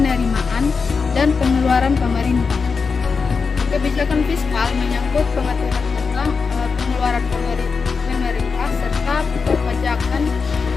dan pengeluaran pemerintah. Kebijakan fiskal menyangkut pengaturan tentang pengeluaran pemerintah serta perpajakan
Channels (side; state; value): right; quieter; 5.0 dB